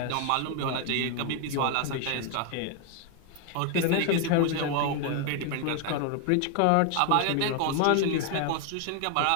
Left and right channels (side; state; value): both; different; correlation 0.00